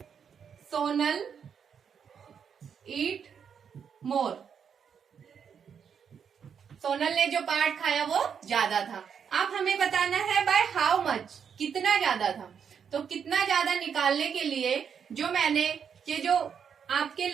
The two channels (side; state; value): left; quieter; 7.3 dB